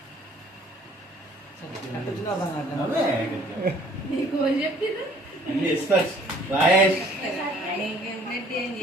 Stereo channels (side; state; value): both; normal; correlation 0.56